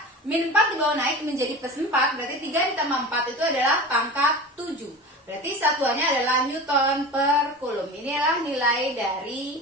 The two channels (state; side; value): normal; both; correlation 0.33